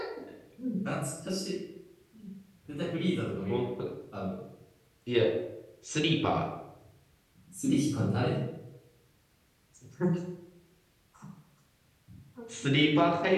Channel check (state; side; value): identical; both; correlation 1.00